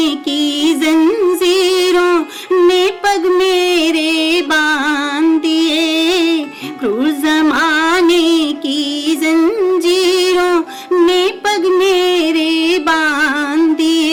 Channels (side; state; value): both; identical; correlation 1.00